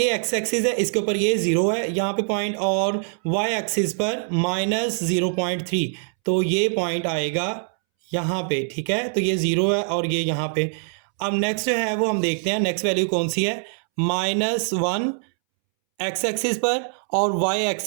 एक्स एक्सिस है, इसके ऊपर ये 0 है यहाँ पे पॉइंट और वाई एक्सिस पर -0.3। तो ये पॉइंट आएगा यहाँ पे, ठीक है। तो ये 0 है और ये यहाँ पे। अब नेक्स्ट जो है वो हम देखते हैं नेक्स्ट वैल्यू कौन सी है। -1 एक्स एक्सिस पर और वाई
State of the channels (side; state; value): left; silent; 63 dB below the other